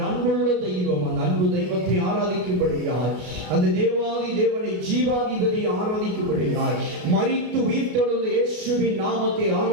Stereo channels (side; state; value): left; late; 33 ms